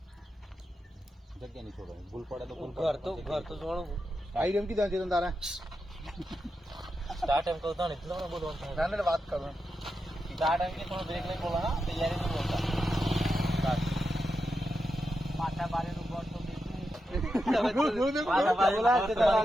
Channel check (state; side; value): normal; both; correlation 0.87